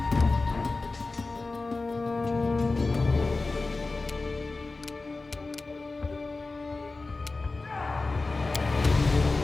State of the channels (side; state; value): right; quieter; 3.6 dB